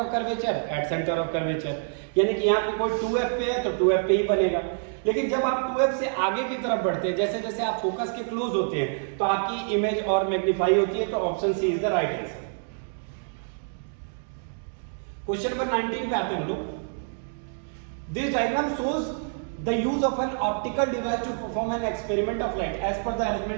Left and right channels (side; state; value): left; silent; digital silence